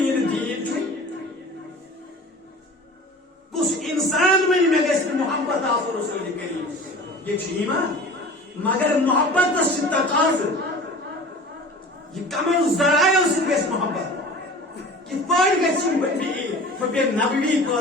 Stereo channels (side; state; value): both; normal; correlation 0.40